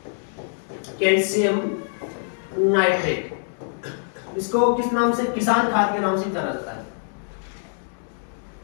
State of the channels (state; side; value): silent; right; digital silence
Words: calcium nitrate. इसको किस नाम से, किसान खाद के नाम से जाना जाता है।